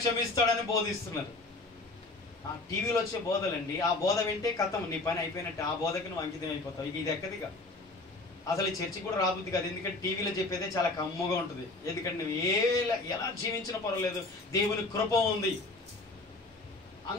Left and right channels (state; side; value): quieter; right; 3.1 dB